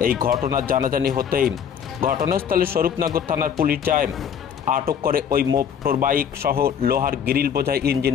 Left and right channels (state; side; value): quieter; right; 8.1 dB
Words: এই ঘটনার জানাজানি হতেই ঘটনাস্থলে স্বরূপনগর থানার পুলিশ যায়, আটক করে ওই মোটর বাইক সহ লোহার গ্রিল বোঝাই